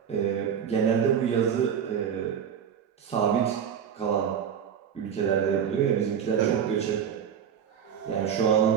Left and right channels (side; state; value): left; quieter; 8.1 dB